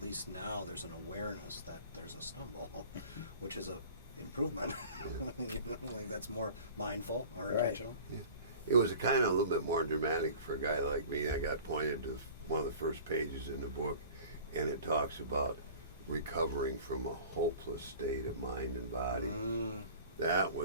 least now there's an awareness that there's a stumble, which is a improvement. You know, like that's more mindful or Right. intentional. It was kind of a little bit more dramatic for a guy like me. I got pointed to one of the first pages in the book, and it talks about recovering from a hopeless state of mind and body. That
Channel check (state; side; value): inverted; both; correlation -0.43